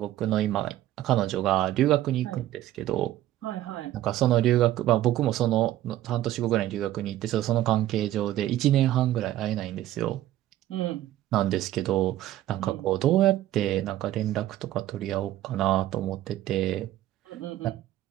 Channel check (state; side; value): quieter; left; 13.8 dB